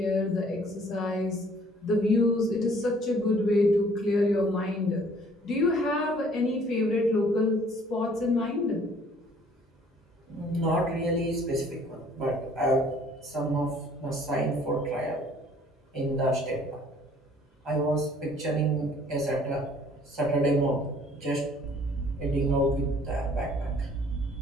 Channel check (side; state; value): both; normal; correlation 0.57